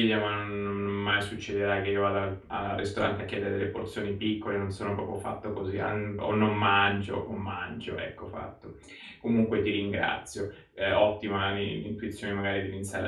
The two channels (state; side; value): identical; both; correlation 1.00